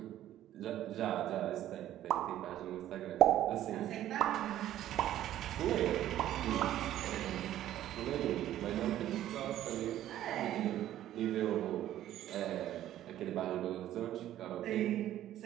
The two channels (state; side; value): quieter; left; 12.7 dB